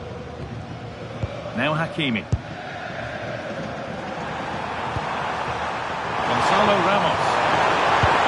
Now Hakimi. Gonzalo Ramos.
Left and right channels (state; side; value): identical; both; correlation 1.00